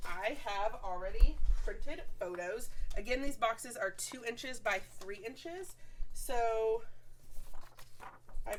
I have already printed photos. Again, these boxes are 2 inches by 3 inches. So I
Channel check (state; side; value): identical; both; correlation 1.00